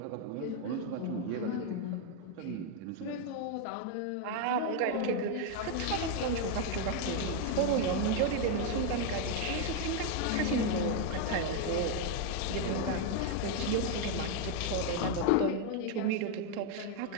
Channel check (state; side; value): different; both; correlation 0.01